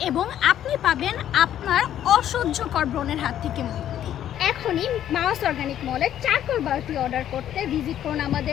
এবং আপনি পাবেন আপনার অসহ্যকর ব্রণের হাত থেকে মুক্তি। এখনই মাউস অর্গানিক মলের চারকোল বারটি অর্ডার করতে ভিজিট করুন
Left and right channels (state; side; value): quieter; right; 11.0 dB